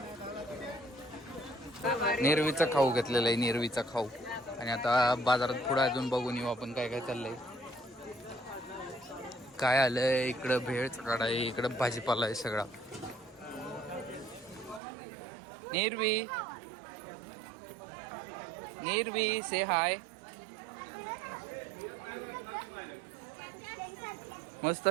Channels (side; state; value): left; drops out; at 14.8 s